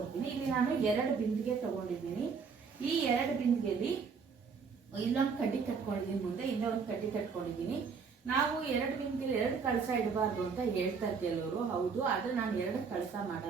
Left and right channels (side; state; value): left; quieter; 5.6 dB